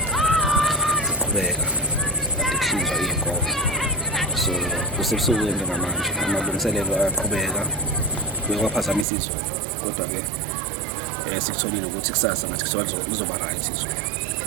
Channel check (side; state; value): left; drops out; at 9.1 s